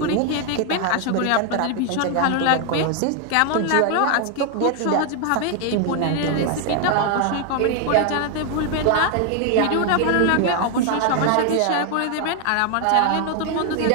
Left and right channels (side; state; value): both; different; correlation 0.00